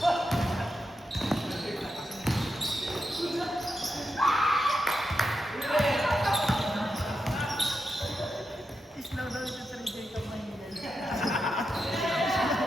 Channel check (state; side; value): normal; both; correlation 0.87